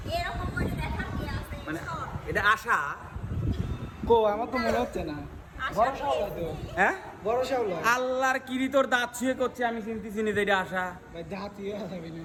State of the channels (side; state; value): both; identical; correlation 1.00